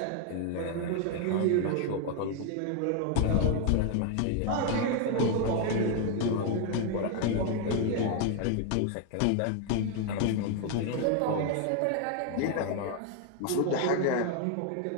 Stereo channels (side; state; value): both; different; correlation 0.01